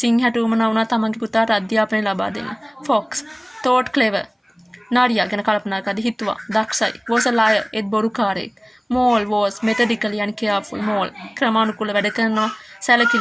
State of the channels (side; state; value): both; identical; correlation 1.00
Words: සිංහට උමනා වුණා තමන්ගේ පුතාට අධ්‍යාපනය ලබා දෙන්න. Fox thought clever. නාරියා ගැන කල්පනා කරද්දී හිතුවා දක්ෂයි. Was a liar, ඒත් බොරුකාරයෙක්. Mole was methodically and careful. Mole ක්‍රමානුකූල වැඩ කරනවා